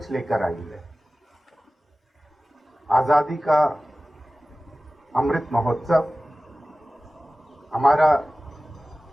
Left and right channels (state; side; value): normal; both; correlation 0.96